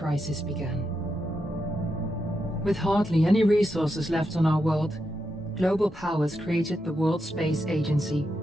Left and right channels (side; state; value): both; normal; correlation 0.85